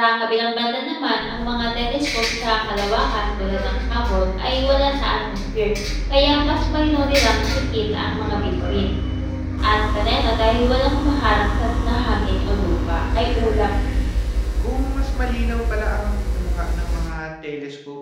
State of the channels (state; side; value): identical; both; correlation 1.00